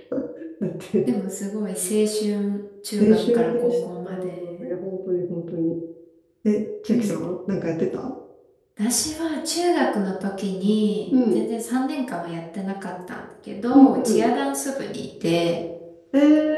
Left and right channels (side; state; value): both; identical; correlation 1.00